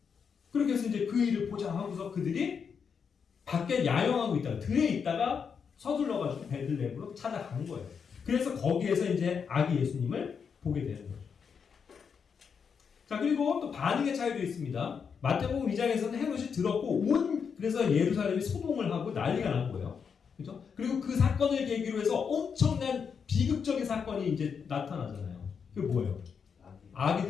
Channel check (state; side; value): quieter; right; 6.4 dB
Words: 그렇게 해서 이제 그 일을 보자 하고서 그들이 밖에 야영하고 있다가 들에 있다가 서둘러가지고 베들레헴으로 찾아가는 거예요. 그래서 거기에서 이제 아기 예수님을 보게 되는 거죠. 자, 그리고 또 반응의 차이도 있습니다. 마태복음 2장에서는 헤롯이 들었고 그래서 예루살렘이 소동을 하고 난리가 난 거예요. 그죠? 그리고 그 사건을 계기로 해서 엄청난 비극적인 사건이 이제 나타나잖아요. 그게 뭐예요?